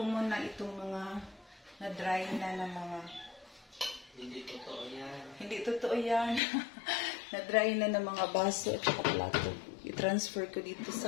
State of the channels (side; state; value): right; drops out; at 6.4 s